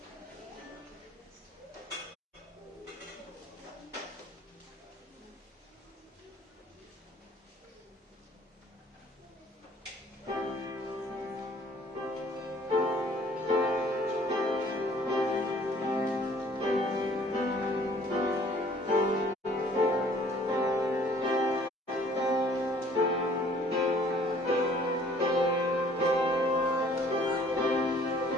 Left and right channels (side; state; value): both; normal; correlation 0.56